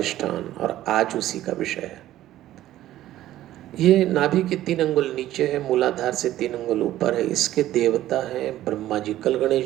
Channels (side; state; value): left; quieter; 13.9 dB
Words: और आज उसी का विषय है। ये नाभि के 3 अंगुल नीचे है, मूलाधार से 3 अंगुल ऊपर है। इसके देवता हैं ब्रह्मा जी, कल